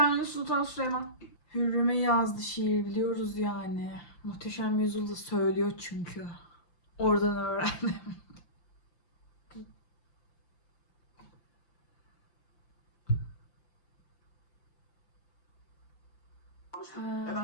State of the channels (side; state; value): right; late; 5.8 ms